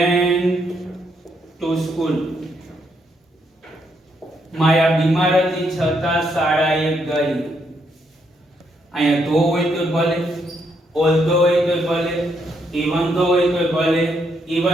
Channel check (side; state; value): both; normal; correlation 0.76